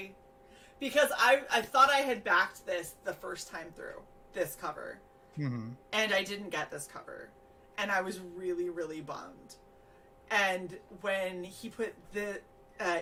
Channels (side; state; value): both; identical; correlation 1.00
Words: because I thought I had backed this the first time through, this cover. Mm-hmm. And I didn't get this cover. And I was really, really bummed. And when he put the